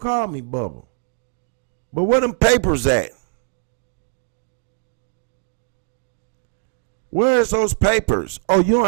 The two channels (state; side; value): silent; left; digital silence